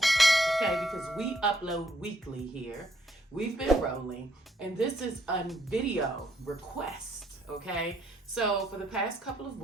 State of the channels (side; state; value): both; normal; correlation 0.70